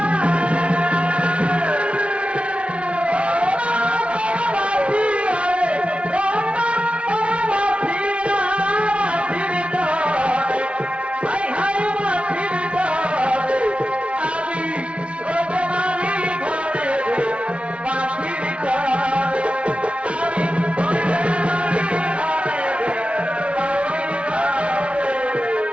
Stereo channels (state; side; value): late; left; 0.061 ms